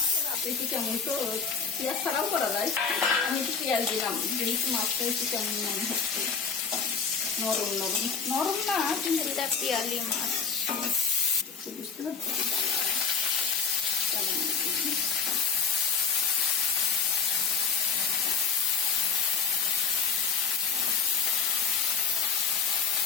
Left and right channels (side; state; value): right; quieter; 5.8 dB